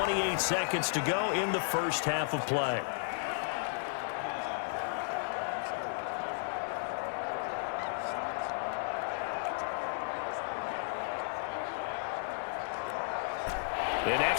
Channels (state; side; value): silent; right; digital silence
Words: seconds to go in the first half of play. An